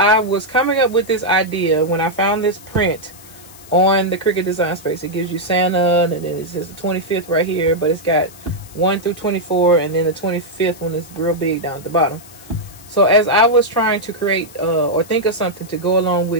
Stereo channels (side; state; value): left; noise; hiss, 21 dB below the sound